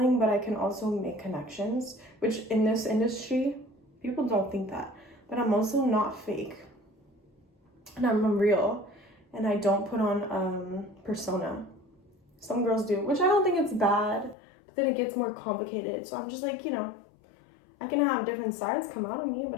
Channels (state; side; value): drops out; right; at 14.4 s